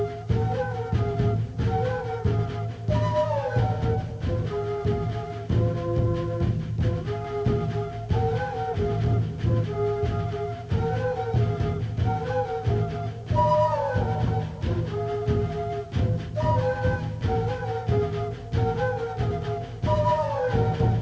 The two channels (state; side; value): identical; both; correlation 1.00